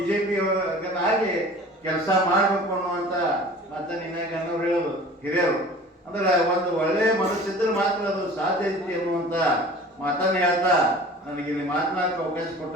ಆಗಿ ಕೆಲಸ ಮಾಡಬೇಕು ಅನ್ನುವಂಥ ಮಾತನ್ನು ಇನ್ನಾಗ ಅನ್ನೋರು ಹೇಳೋದು ಹಿರಿಯರು. ಅಂದ್ರೆ ಒಂದು ಒಳ್ಳೆಯ ಮನಸ್ಸಿದ್ರೆ ಮಾತ್ರ ಅದು ಸಾಧ್ಯ ಐತಿ ಅನ್ನುವಂಥ ಮಾತನ್ನು ಹೇಳ್ತಾ ನನಗೆ ಇಲ್ಲಿ ಮಾತನಾಡಕ್ಕೆ ಅವಕಾಶ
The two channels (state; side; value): normal; both; correlation 0.43